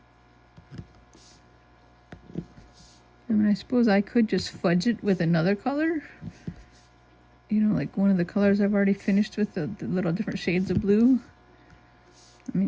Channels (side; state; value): both; identical; correlation 1.00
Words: I mean, I suppose I could just fudge it with another color. You know, like one of the colors I've already finished with the little different shades of blue. I